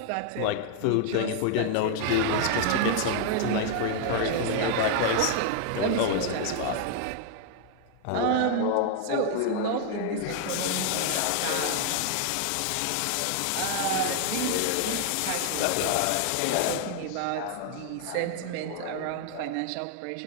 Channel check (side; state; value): both; different; correlation 0.00